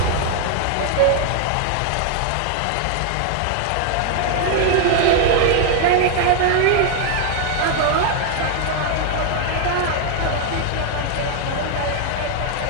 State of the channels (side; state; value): both; different; correlation 0.00